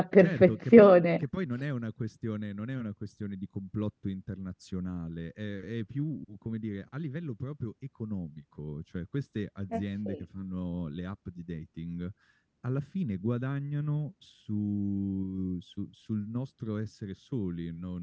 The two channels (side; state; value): both; identical; correlation 1.00